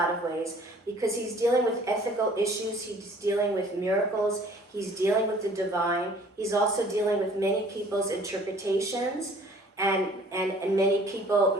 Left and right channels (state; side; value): normal; both; correlation 0.54